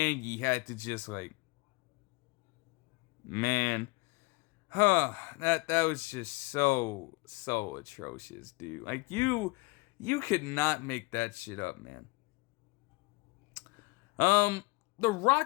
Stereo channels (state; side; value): quieter; right; 25.5 dB